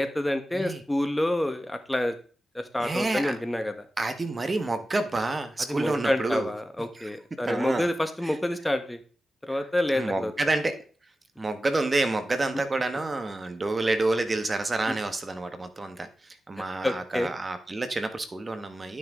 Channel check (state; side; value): normal; both; correlation 0.94